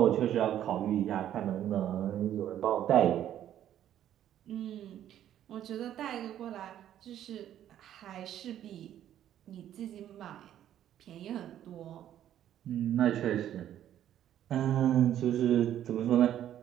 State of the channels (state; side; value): quieter; left; 11.2 dB